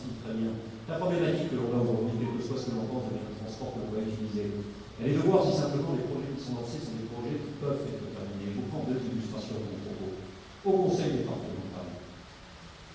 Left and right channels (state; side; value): identical; both; correlation 1.00